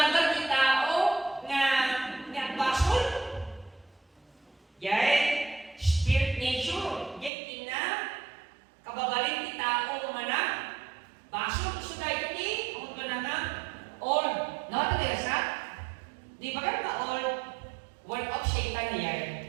ti tao nga basol? Yay, spirit nature. Yay, tina, kababalin ti tao umana. Basol, gusto dahil ti, ang na nga, all. Nakapalayasan? Di ba ka all work of Satan na yan?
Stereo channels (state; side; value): drops out; left; at 7.3 s